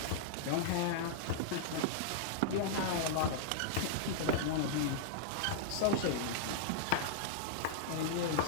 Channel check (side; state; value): both; different; correlation -0.02